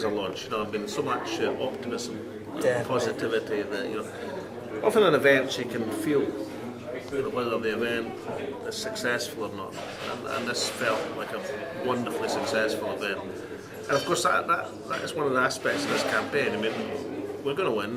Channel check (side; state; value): both; identical; correlation 1.00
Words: a launch. You know, I've been so much optimism, positivity that, you know, often in events you can feel whether the event is successful or not, and this felt like a wonderfully successful event. And of course that is one of the aspects of this campaign. I mean, we're going to